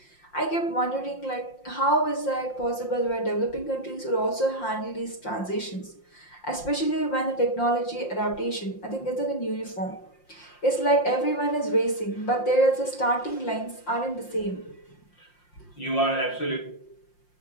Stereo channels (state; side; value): late; right; 5.7 ms